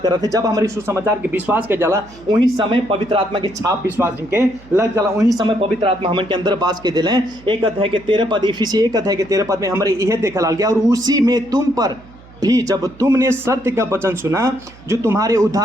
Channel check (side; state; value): right; noise; hum, 23 dB below the sound